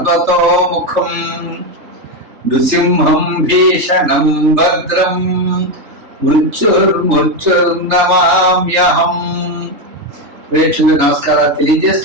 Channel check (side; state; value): left; late; 3.3 ms